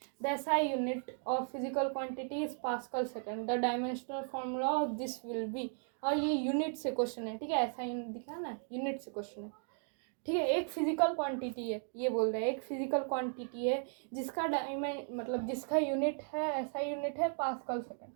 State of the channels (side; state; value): left; silent; 54 dB below the other